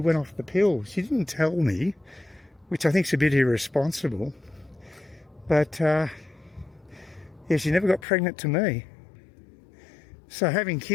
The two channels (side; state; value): right; drops out; at 8.1 s